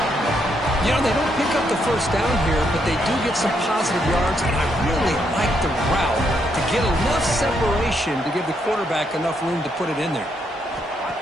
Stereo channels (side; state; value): both; normal; correlation 0.76